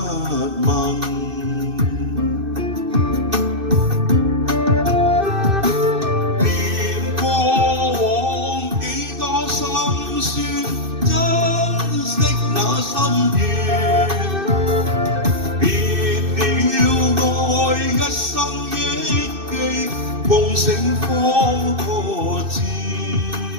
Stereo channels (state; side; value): late; left; 2.6 ms